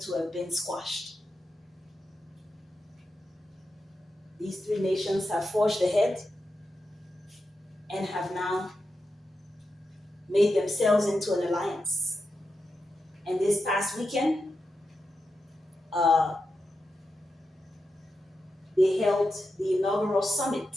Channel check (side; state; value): both; normal; correlation 0.89